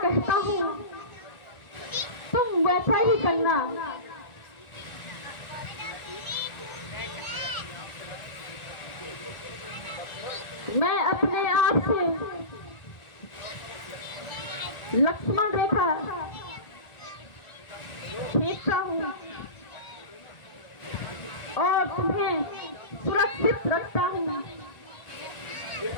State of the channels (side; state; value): right; late; 1.4 ms